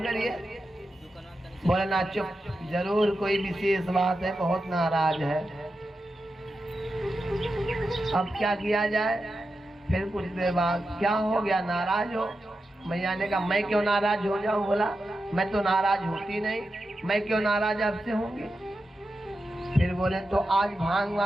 बोले ना चुप, जरूर कोई विशेष बात है, बहुत नाराज है। अब क्या किया जाए? फिर कुछ देर बाद, क्या हो गया, नाराज हो? मैया ने कहा मैं क्यों नाराज हो जाऊं? बोला मैं तो नाराज होती नहीं, मैं क्यों नाराज आपसे होंगी? फिर बोले तो आज भांग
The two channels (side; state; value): both; normal; correlation 0.90